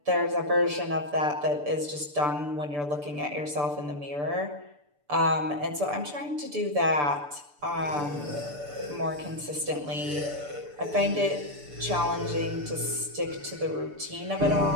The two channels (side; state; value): left; late; 6.8 ms